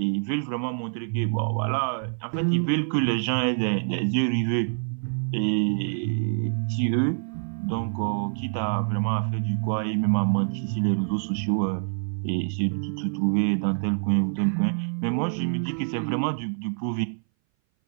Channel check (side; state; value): left; silent; 59 dB below the other